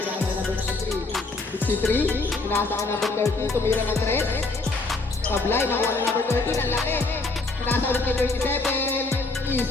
kay number 63. 63, pinasa kay number 30, tumira ng 3. Sablay, nakuha ng number 30, ang laki. Pinasa ulit kay 27.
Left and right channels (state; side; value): quieter; right; 3.5 dB